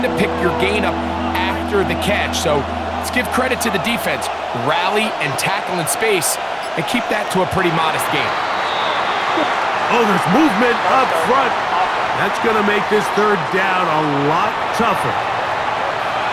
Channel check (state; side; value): identical; both; correlation 1.00